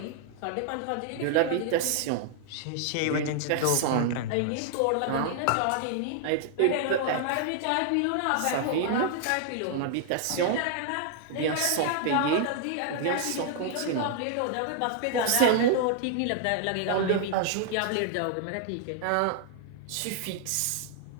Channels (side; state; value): both; different; correlation -0.01